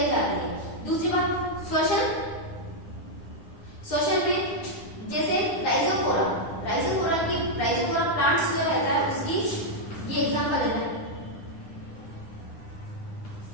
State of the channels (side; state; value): right; late; 9.7 ms